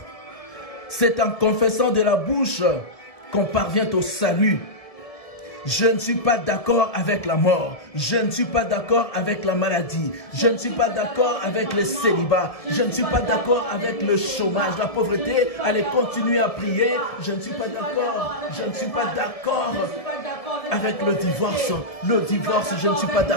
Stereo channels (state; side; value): late; right; 1.7 ms